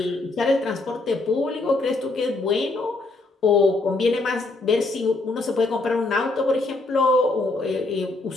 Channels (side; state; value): right; quieter; 3.2 dB